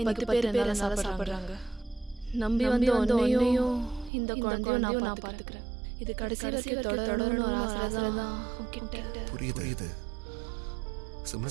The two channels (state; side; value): drops out; left; at 4.1 s